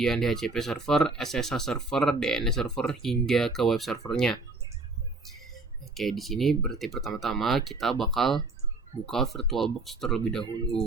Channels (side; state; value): left; quieter; 3.3 dB